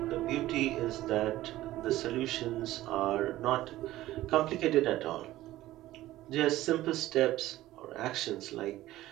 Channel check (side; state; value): left; quieter; 15.6 dB